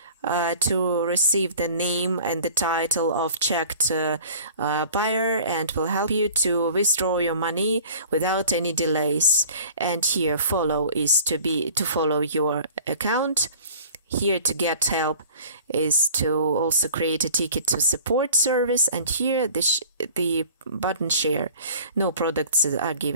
to receive the name and the title of checked buyer, and will help you to withdraw your money without any delays. And here follow is to follow your account. Here to get help is to also create a ticket to support service, and here the button share. No products are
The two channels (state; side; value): inverted; both; correlation -0.46